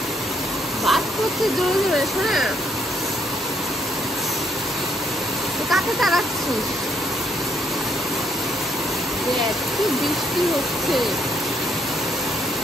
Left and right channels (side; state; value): both; normal; correlation 0.71